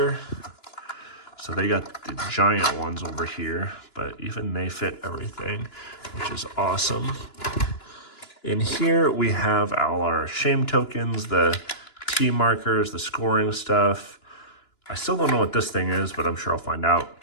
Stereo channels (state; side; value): late; right; 2.9 ms